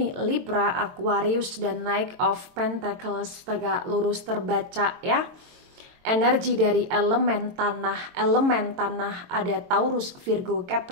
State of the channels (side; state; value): left; late; 22 ms